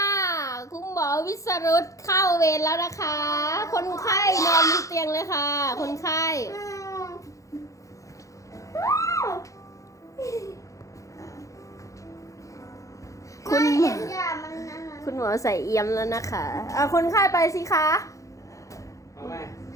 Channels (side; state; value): right; late; 0.16 ms